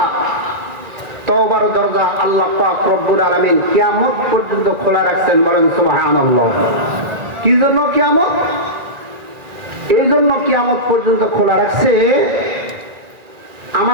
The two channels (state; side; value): late; left; 1.9 ms